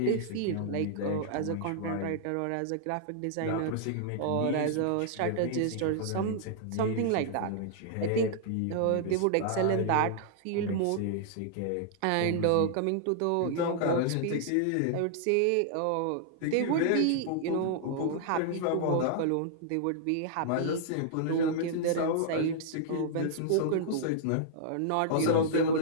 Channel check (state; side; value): different; both; correlation -0.01